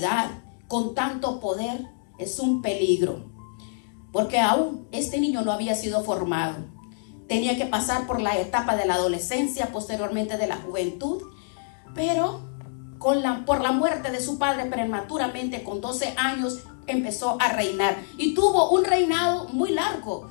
con tanto poder, es un peligro. Porque aún este niño no había sido formado. Tenía que pasar por la etapa de la adolescencia, posteriormente de la juventud. Pero por la muerte de su padre prematuramente, con 12 años, empezó a reinar. Y tuvo un reinado muy largo,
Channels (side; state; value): right; silent; digital silence